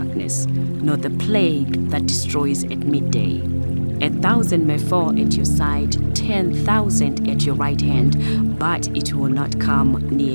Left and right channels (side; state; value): both; inverted; correlation -1.00